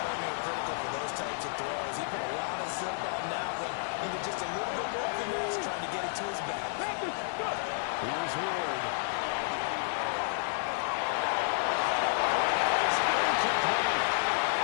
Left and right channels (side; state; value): right; silent; digital silence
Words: are critical for those types of throws. He put a lot of zip on that one. Needed just a little bit more finesse trying to get it to his back. Here's Ward.